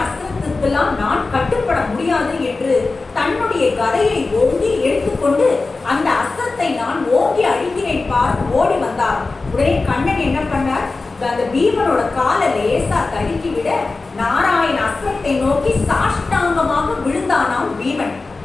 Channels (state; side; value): quieter; right; 3.7 dB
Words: அஸ்திரத்துக்கெல்லாம் நான் கட்டுப்பட முடியாது என்று தன்னுடைய கதையை ஓங்கி எடுத்துக்கொண்டு அந்த அஸ்திரத்தை நான் ஓங்கி அழிக்கிறேன் பார் ஓடி வந்தார். உடனே கண்ணன் என்ன பண்ணார், அந்த பீமனோட காலை லேசா தடுக்கி விட நாராயண அஸ்திரத்தை நோக்கி சாஷ்டாங்கமாக விழுந்தானாம் பீமன்.